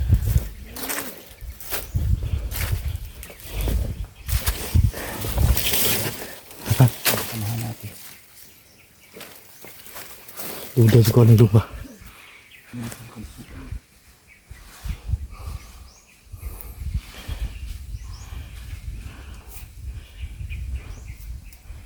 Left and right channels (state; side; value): identical; both; correlation 1.00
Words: Samahan natin. Duda sa kuwan ng lupa.